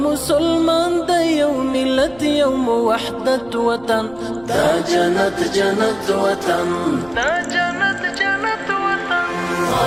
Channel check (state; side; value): noise; right; rumble, 24 dB below the sound